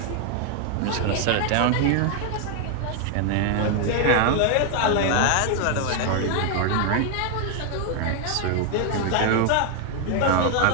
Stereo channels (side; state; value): both; different; correlation 0.00